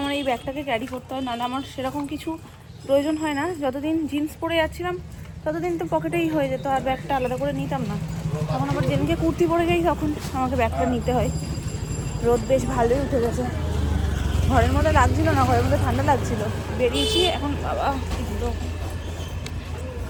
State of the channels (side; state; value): both; identical; correlation 1.00